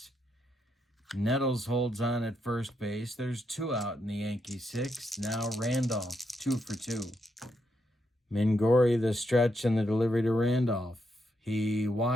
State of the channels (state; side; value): normal; both; correlation 0.80